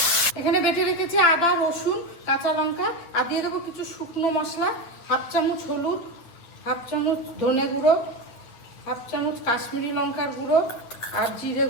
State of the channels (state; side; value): late; right; 8.9 ms